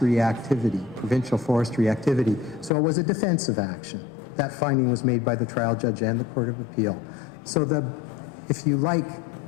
activity, provincial forestry activity, so it was a defensive action. That finding was made by the trial judge and the Court of Appeal. So if you like,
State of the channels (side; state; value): right; drops out; at 2.7 s